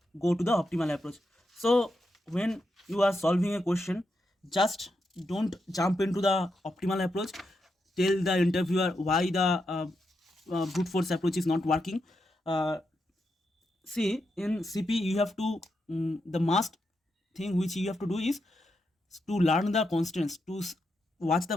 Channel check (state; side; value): normal; both; correlation 0.84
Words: go to the optimal approach. So when you are solving a question, just don't jump into the optimal approach. Tell the interviewer why the brute force approach is not working. See, in CP you have to the must thing which you have to do is to learn the constants, to watch the